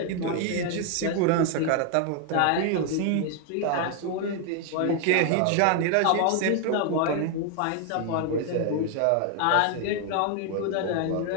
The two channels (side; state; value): both; different; correlation 0.00